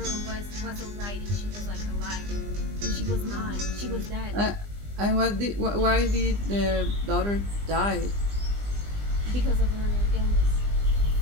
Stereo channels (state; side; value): late; left; 20 ms